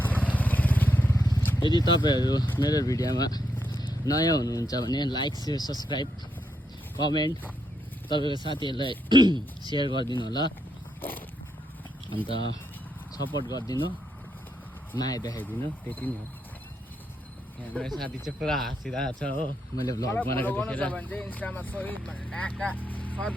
यदि तपाईँहरू मेरो भिडियोमा नयाँ हुनुहुन्छ भने लाइक सेयर सब्सक्राइब कमेन्ट तपाईँको साथीहरूलाई सेयर गरिदिनु होला अन्त सपोर्ट गरिदिनु माया देखाइदिनु त्यति नै हो यहाँ मेरो साथी चाहिँ पुरा हाँसिरहेको छ हो मैले भ्लग बनाएको देखेर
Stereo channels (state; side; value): normal; both; correlation 0.80